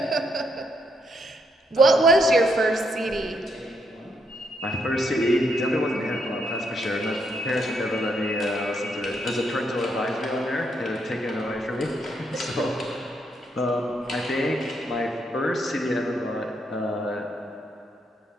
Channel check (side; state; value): both; normal; correlation 0.76